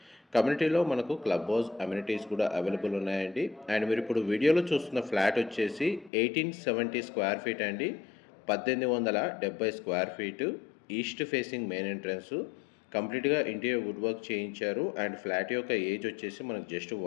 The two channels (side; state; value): right; drops out; at 6.1 s